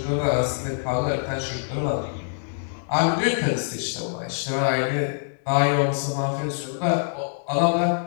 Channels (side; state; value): right; silent; 62 dB below the other